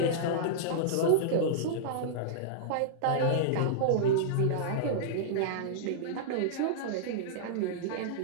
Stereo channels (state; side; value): different; both; correlation -0.02